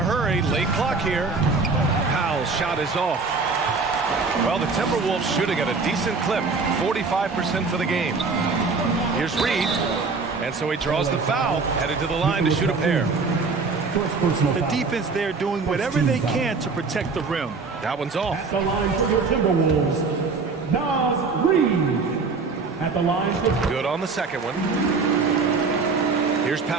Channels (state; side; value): quieter; left; 4.4 dB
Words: Late clock here. Powell's shot is off. Well, the Timberwolves shooting at a decent clip. 45% for the game. Here's Reed. And so he draws the foul. Headed to the line to shoot a pair. The defense there doing whatever they can to protect the rim. That one's off. At the line for the Timberwolves, Nas Reed. At the line for... Good on the second one. Here's